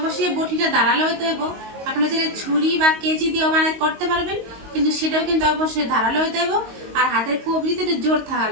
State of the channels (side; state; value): left; late; 22 ms